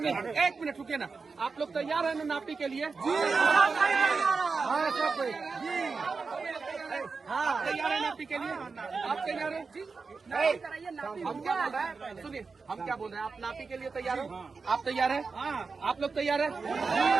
एक मिनट रुकिए ना, आप लोग तैयार है ना नापी के लिए? हाँ तैयार है नापी के लिए? आप तैयार है? हम क्या बोल रहे हैं सुनिए, हम क्या बोल रहे हैं, आप नापी के लिए तैयार हो? आप तैयार है? आप लोग तैयार है?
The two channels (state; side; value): quieter; left; 4.6 dB